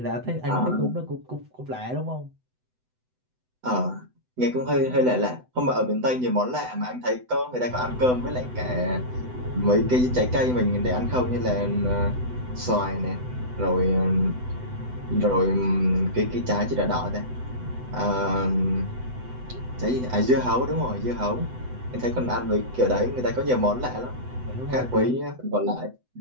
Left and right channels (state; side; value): late; left; 7.9 ms